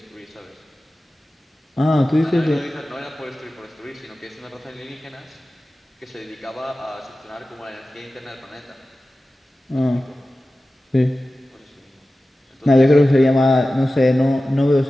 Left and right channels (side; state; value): both; normal; correlation 0.95